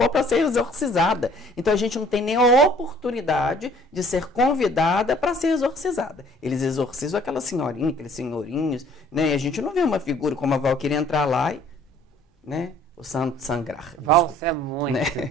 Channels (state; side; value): normal; both; correlation 0.56